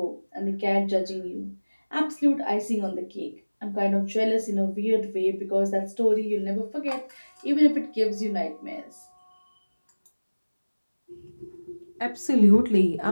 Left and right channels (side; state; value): both; inverted; correlation -1.00